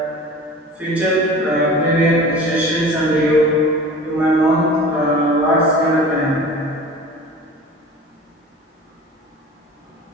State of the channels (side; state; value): both; normal; correlation 0.39